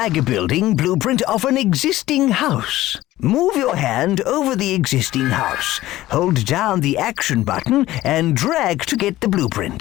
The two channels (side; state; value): right; quieter; 15.9 dB